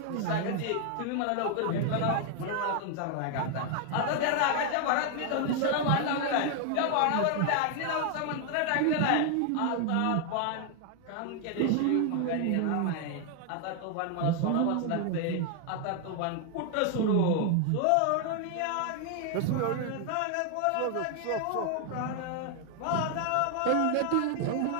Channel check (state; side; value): different; both; correlation 0.00